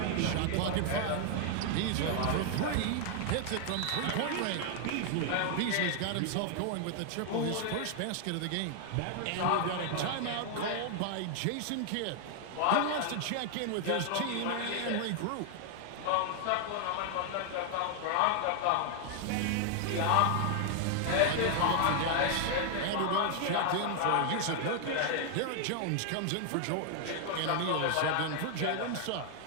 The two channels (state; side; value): different; both; correlation 0.00